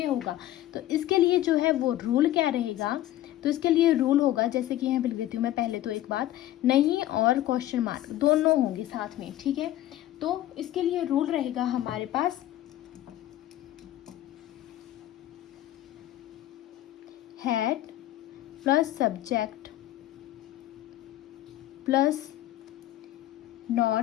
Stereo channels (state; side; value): quieter; right; 13.9 dB